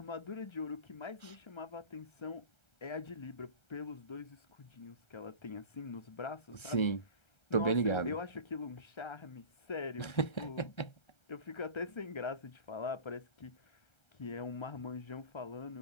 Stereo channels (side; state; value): right; late; 1.3 ms